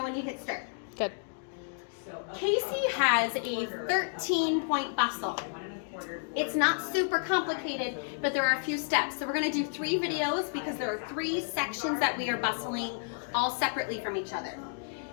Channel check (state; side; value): silent; right; digital silence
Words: when you hit start. Good. Kacie has a 13-point bustle. It's not super complicated, but there are a few steps. So we're going to do 3 videos because there are 3 sections that we are bustling all separately from each other.